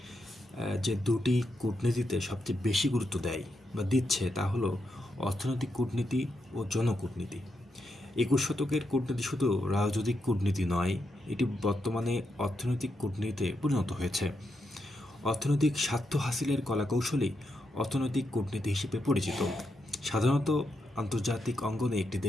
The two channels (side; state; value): both; normal; correlation 0.83